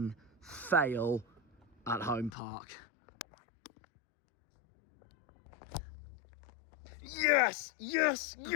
fail at home park. Yes, yes,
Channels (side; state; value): right; drops out; at 2.3 s